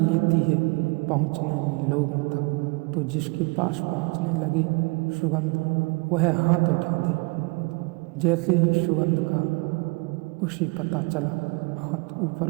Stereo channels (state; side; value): quieter; left; 28.7 dB